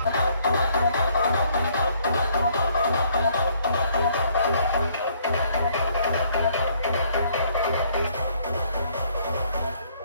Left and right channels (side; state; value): both; inverted; correlation -0.65